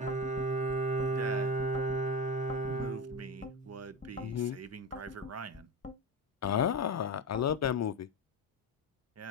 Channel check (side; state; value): both; normal; correlation 0.18